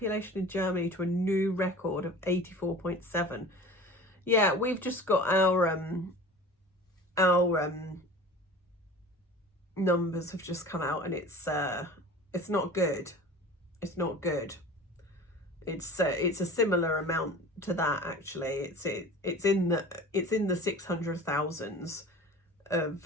in Germany to a new record of 84.7. Yeah, we've just got our numbers have just come out, and it's not good. It's not good. It's a similar amount to that, actually. It's in the 600,000s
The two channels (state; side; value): normal; both; correlation 0.39